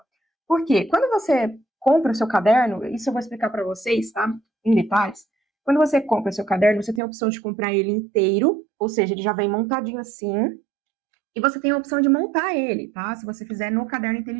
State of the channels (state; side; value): drops out; left; at 7.0 s